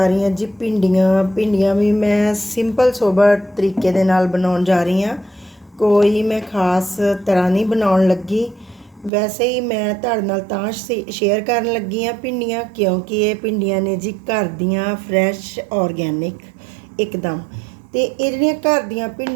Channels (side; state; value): left; drops out; at 9.1 s